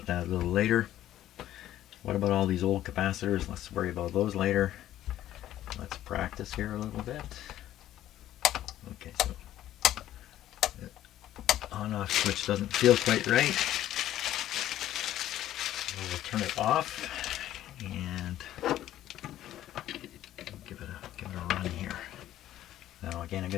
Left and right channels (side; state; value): right; quieter; 12.9 dB